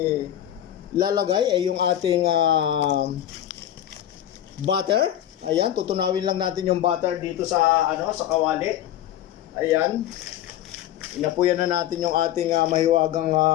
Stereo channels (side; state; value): right; quieter; 11.9 dB